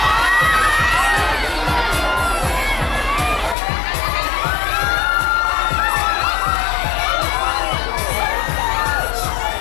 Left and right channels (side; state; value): right; drops out; at 3.6 s